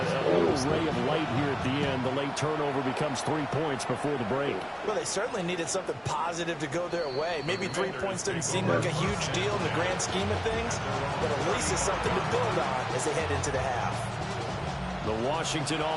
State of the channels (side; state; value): both; identical; correlation 1.00